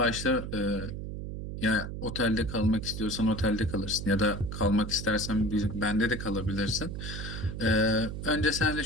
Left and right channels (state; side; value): noise; right; hum, 6 dB below the sound